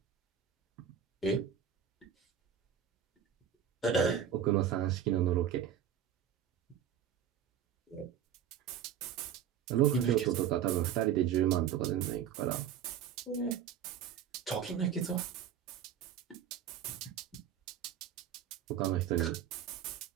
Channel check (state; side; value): quieter; left; 9.1 dB